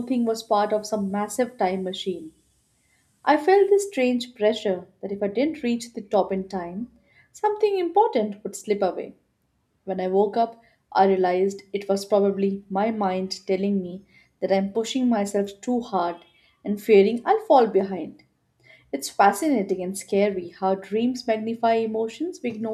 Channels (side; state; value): both; identical; correlation 1.00